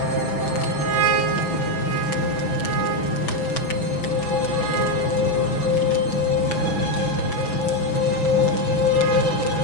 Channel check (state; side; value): late; right; 6.1 ms